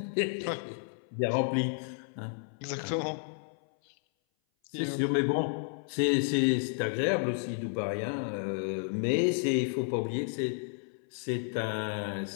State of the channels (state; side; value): silent; right; 57 dB below the other